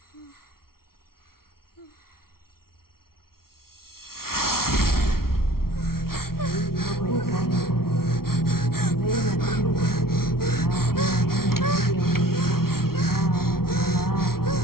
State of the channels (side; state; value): right; late; 0.93 ms